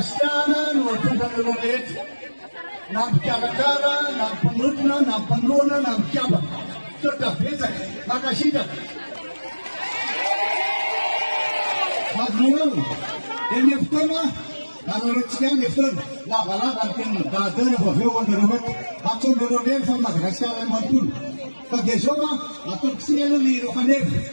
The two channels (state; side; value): inverted; both; correlation -1.00